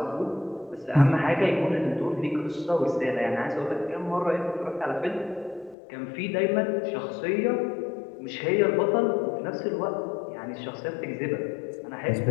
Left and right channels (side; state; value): right; drops out; at 5.8 s